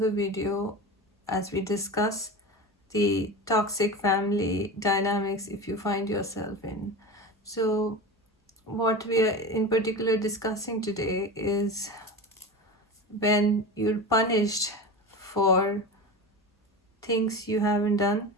video as we discuss the toxic family dynamics if you find yourself in. So what we are in particular discussing today is when you're punished for things you haven't done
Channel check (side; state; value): both; normal; correlation 0.27